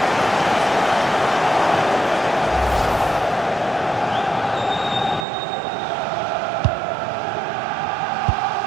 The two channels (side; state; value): left; drops out; at 5.2 s